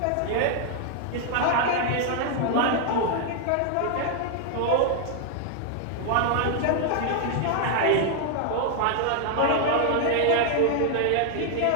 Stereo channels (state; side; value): different; both; correlation 0.00